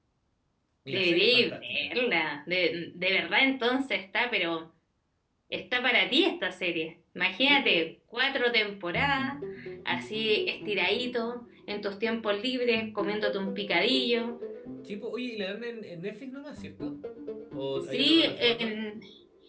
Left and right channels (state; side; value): identical; both; correlation 1.00